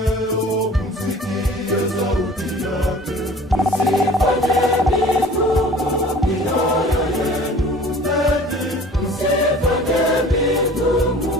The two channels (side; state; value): both; normal; correlation 0.46